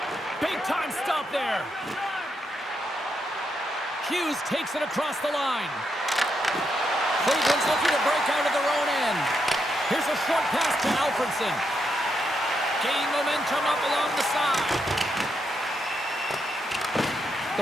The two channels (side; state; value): both; normal; correlation 0.81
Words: Big time stop there. Hughes takes it across the line. Cleveland's looking to break out of their own end. Here's a short pass to Alfredson. Gain momentum up along the side.